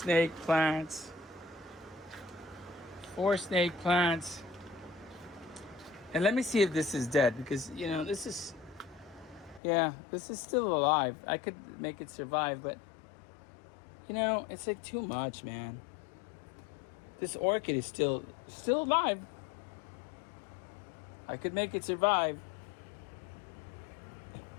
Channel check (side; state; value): right; drops out; at 9.6 s